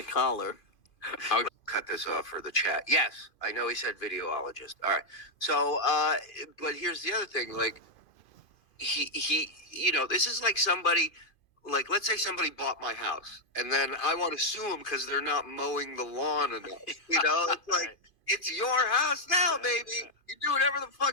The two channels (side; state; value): right; late; 2.5 ms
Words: collar. I'll cut this off for the chat. Yes, I know he said videologist. All right. So, but here's the other thing. Like, he, this is like somebody, like, let's say somebody bought my house, and then I want to sue them because they're not mowing the lawn enough. It's like, it's your house now, baby. You do whatever the